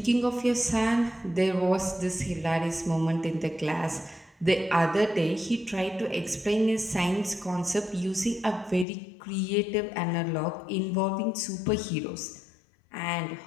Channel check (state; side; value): drops out; right; at 8.8 s